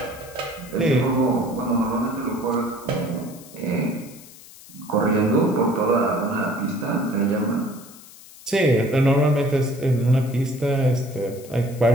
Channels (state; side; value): noise; left; hiss, 20 dB below the sound